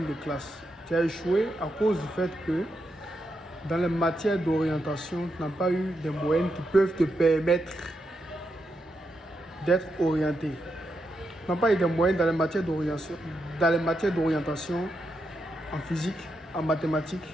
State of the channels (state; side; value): normal; both; correlation 0.84